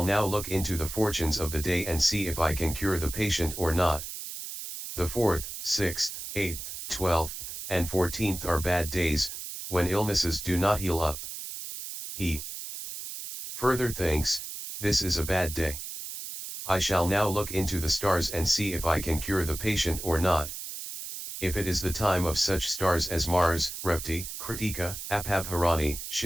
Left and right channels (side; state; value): right; noise; hiss, 8 dB below the sound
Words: now look into the fortunes of the day and see if I can cure the patient or not." The 4th, 6th, 8th, 12th, and 14th are bad days, when illnesses do not heal up. He further thinks, "This is a bad day. I shall now look into the stars and see if I can cure the patient or not. If it is the time of such stars as Mars, Revti, Kritika, Apabharani,